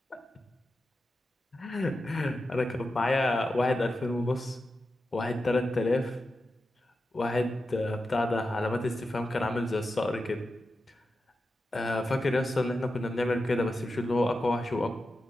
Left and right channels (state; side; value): normal; both; correlation 0.90